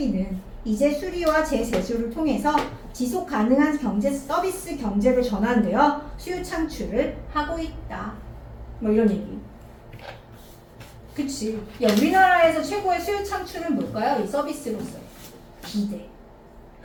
이제 수리와 재세수를 통해서 지속 가능한 경제 서비스 경제로 전환되어 수요 창출을 하고 있다. 뭐 이런 얘기. 그치. 야, 우리나라에서 최고의 수요 창출은 뭘까요? 이 서비스로서. 비대.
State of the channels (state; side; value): identical; both; correlation 1.00